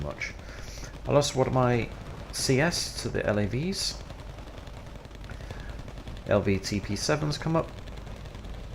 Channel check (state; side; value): identical; both; correlation 1.00